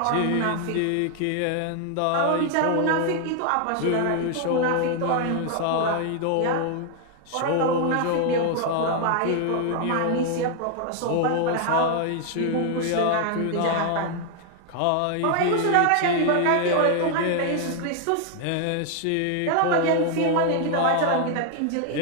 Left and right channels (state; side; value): different; both; correlation 0.00